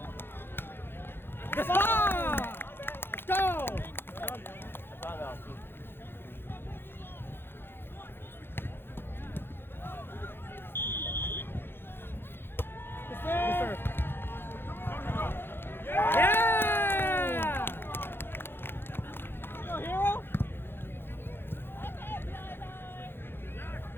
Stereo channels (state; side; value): late; right; 0.10 ms